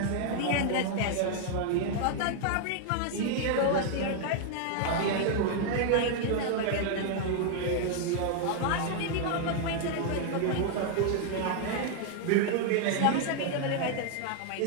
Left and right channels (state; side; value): different; both; correlation 0.00